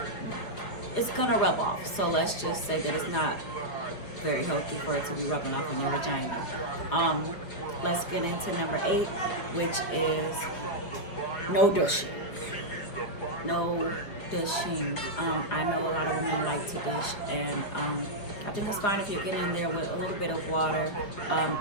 it's gonna rub off. So let's just say that it's not very healthy for it to be rubbing off on your vagina. Let's get into number 8, which is no douching. No douching. I know a lot of women like to douche, and I think it's fine if you get in there with a little bit of water,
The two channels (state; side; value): late; right; 5.2 ms